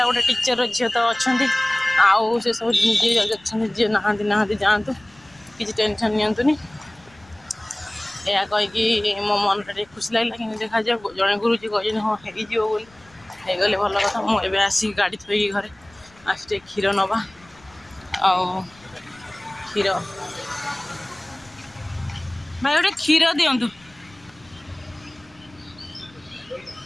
ଗୋଟେ ଟିଚର ଝିଅ ତ ଅଛନ୍ତି, ଆଉ ସେସବୁ ଯିଏ ଅଛନ୍ତି, ଯିଏ ନାହାନ୍ତି ଯାଆନ୍ତୁ, କିଛି ଟେନସନ୍ ନିଅନ୍ତୁନି। ଏହା କହିକି ମୋ ମନଟା ଟିକେ ଖୁସି ଲାଗିଲା। କିନ୍ତୁ ଦେଖାଯାଉ, ଜଣେ ଗୁରୁଜୀ କହିଛନ୍ତି ହଁ ହେଇଯିବ ବୋଲି, ହେଇଗଲେ ଭଲ କଥା। ମୁଁ ଏବେ ଆସିକି ଗାଡ଼ି ଥୋଇକି ଘରେ ଆସି ଟିକେ କ୍ଷୀର ନେବା, ଆଉ କ୍ଷୀର ଭାଇ ଗୋଟେ କ୍ଷୀର ଦିଅନ୍ତୁ।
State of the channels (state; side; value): noise; left; rumble, 28 dB below the sound